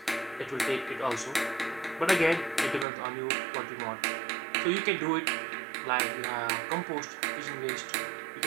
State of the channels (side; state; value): left; drops out; at 2.9 s